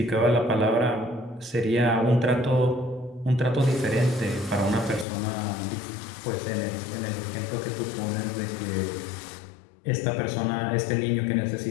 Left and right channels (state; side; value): drops out; right; at 5.1 s